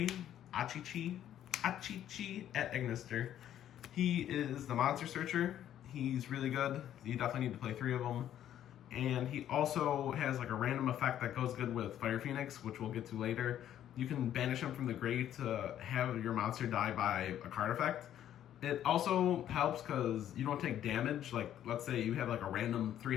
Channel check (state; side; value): quieter; right; 11.1 dB